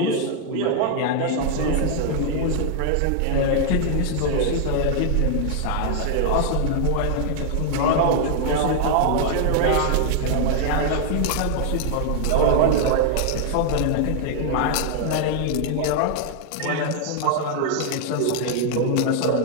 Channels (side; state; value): both; different; correlation 0.00